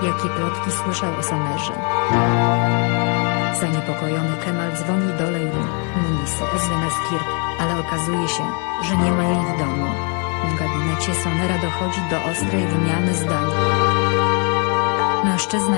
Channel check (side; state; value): right; quieter; 38.1 dB